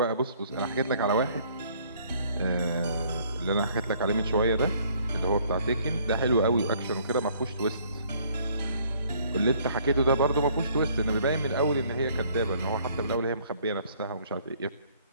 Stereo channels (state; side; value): inverted; both; correlation -0.61